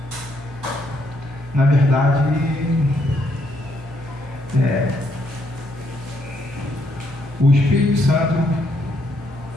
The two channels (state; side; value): normal; both; correlation 0.73